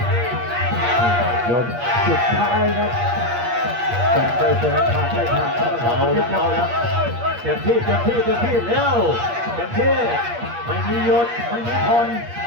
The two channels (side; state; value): left; late; 8.5 ms